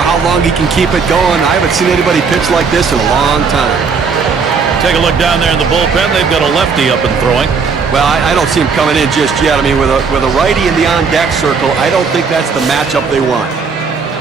long he can keep it going. I haven't seen anybody pitch like this in a long time. Take a look down there in the bullpen. They've got a lefty up and throwing. Well, I don't see him coming in just yet. I mean, with a righty in the on-deck circle, I don't think that's the matchup they want.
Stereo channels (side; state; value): left; quieter; 5.4 dB